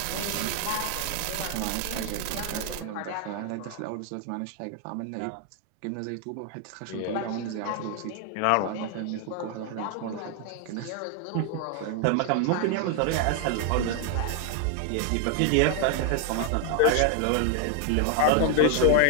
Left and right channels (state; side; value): different; both; correlation 0.00